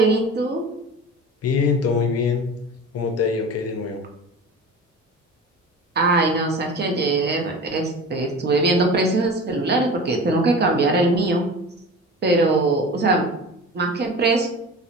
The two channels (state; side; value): normal; both; correlation 0.35